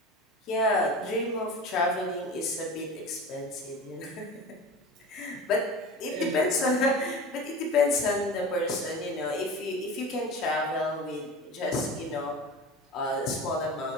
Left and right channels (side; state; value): both; normal; correlation 0.33